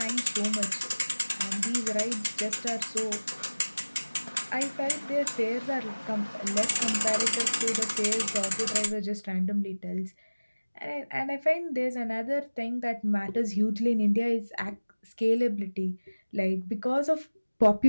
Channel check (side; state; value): both; inverted; correlation -1.00